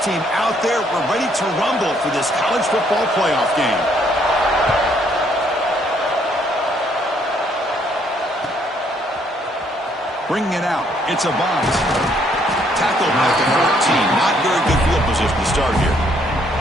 team out there. We're ready to rumble for this college football playoff game. Bringing it out. It's a bunt. Tackled at the 14. Not very good field position to start here.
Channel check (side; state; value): both; normal; correlation 0.68